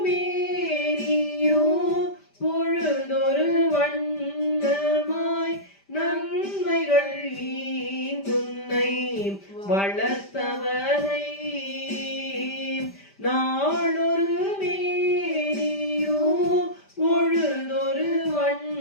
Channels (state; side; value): late; right; 5.1 ms